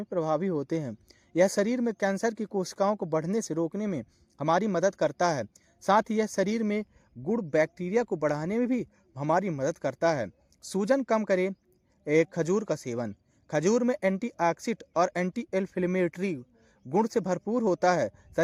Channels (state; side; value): identical; both; correlation 1.00